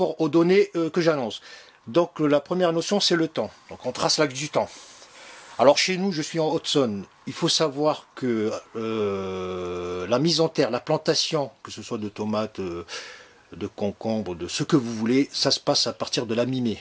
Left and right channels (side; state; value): both; identical; correlation 1.00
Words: aux données que j'annonce. Donc la première notion, c'est le temps. Donc on trace l'axe du temps. Alors chez nous, je suis en Haute-Saône. Il faut savoir que la mise en terre, la plantation, que ce soit de tomates, de concombres, de ce que vous voulez, ça se passe à partir de la mi-mai.